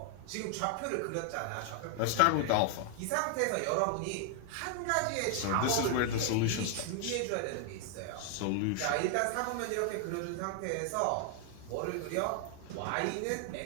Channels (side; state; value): both; different; correlation 0.00